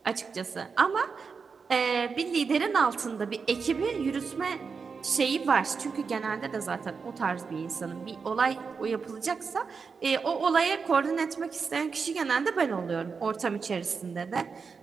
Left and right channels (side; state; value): left; quieter; 5.3 dB